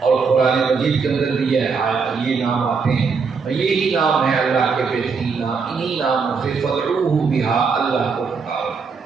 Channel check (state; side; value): quieter; left; 5.2 dB